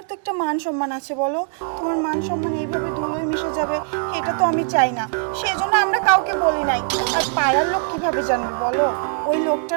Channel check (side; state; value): left; silent; 56 dB below the other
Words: তো একটা মান সম্মান আছে, বলো তোমার মান সম্মান এইভাবে ধুলোয় মিশে যাবে, এটা তো আমি চাই না, সেজন্য আমরা কাউকে বলি নাই। আর পাড়ার লোক কিভাবে জানবে বলো? ওই লোকটা